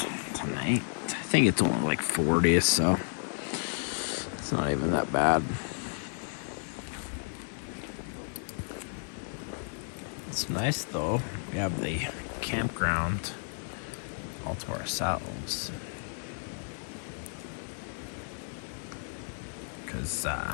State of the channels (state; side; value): silent; right; digital silence